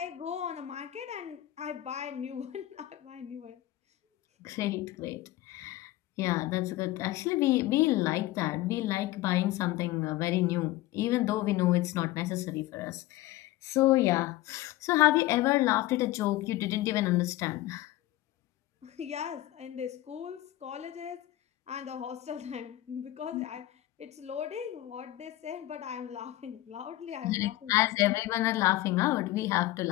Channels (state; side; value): quieter; right; 16.0 dB